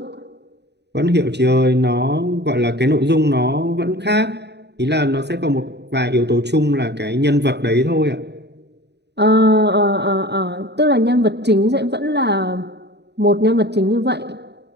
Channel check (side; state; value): left; late; 0.49 ms